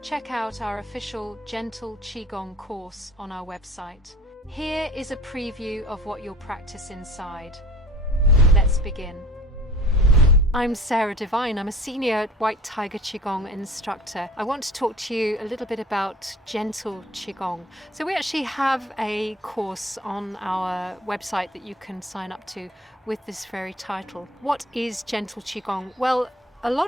check out our official Gentle Qigong course on our website. Here is a preview of what you'll practice inside. Let's begin. I'm Sarah Devine. I'm a Senior White Tiger Qigong Instructor. I want to talk to you a little bit about Gentle Qigong. So we actually have a course on our website that you can sign up to with this very title. What is Gentle Qigong? Well, a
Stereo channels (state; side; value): normal; both; correlation 0.45